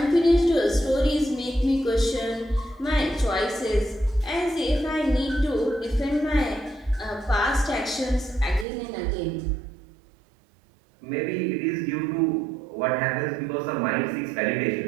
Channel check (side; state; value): left; drops out; at 8.7 s